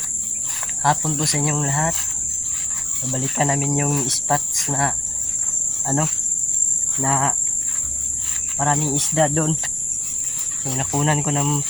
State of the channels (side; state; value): right; noise; rumble, 18 dB below the sound